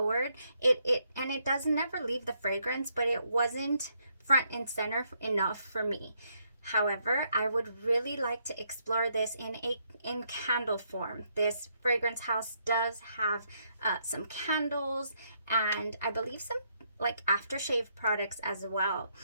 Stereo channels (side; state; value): both; inverted; correlation -0.75